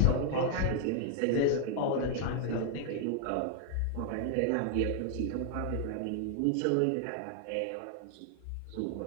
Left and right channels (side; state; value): both; different; correlation 0.00